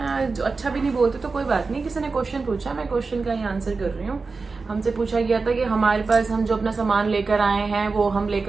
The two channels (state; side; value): quieter; left; 4.2 dB